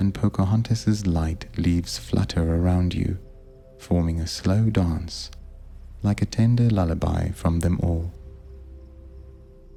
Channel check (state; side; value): identical; both; correlation 1.00